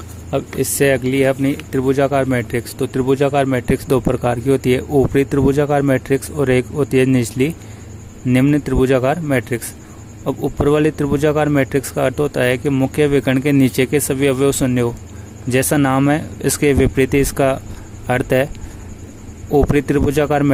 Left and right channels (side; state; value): both; identical; correlation 1.00